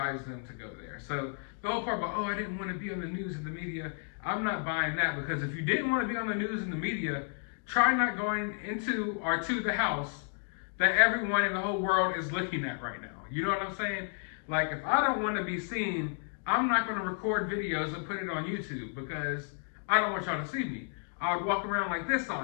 them to go there. So the whole part about, oh, I didn't want to be on the news and the media, I'm not buying that, because if you didn't want to be on the news and the media, try not going into or to the house that everyone in the whole world is looking at right now. You know what I'm saying? Like, if I don't want to be seen, I'm not going to record videos and put it on YouTube, because I don't want y'all to see me. I would walk around like this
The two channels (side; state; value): right; silent; 55 dB below the other